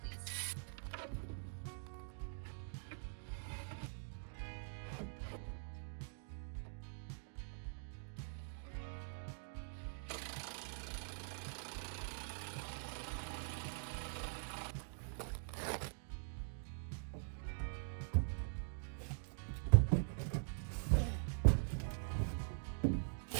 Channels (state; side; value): silent; left; digital silence